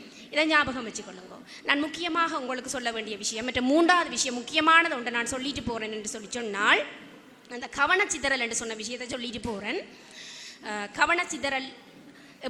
இதை ஞாபகம் வச்சுக்கொள்ளுங்கோ. நான் முக்கியமாக உங்களுக்கு சொல்ல வேண்டிய விஷயம், மற்ற 3வது விஷயம் முக்கியமானது ஒன்று நான் சொல்லிட்டு போகிறேன் என்று சொன்னால், அந்த கவனச்சிதறல் என்று சொன்ன விஷயத்தை சொல்லிட்டு போகிறேன். கவனச்சிதறல்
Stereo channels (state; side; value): identical; both; correlation 1.00